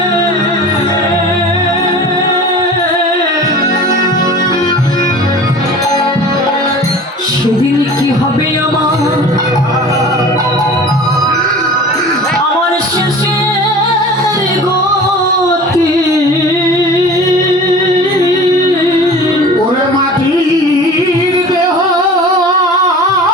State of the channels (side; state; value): both; normal; correlation 0.40